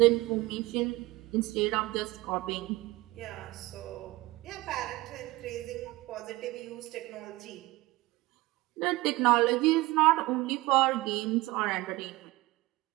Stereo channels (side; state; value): left; quieter; 20.2 dB